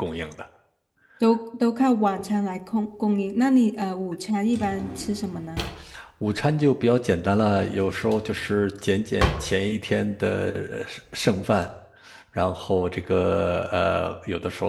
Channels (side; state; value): both; identical; correlation 1.00